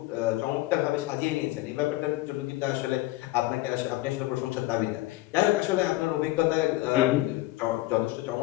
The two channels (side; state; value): right; quieter; 18.3 dB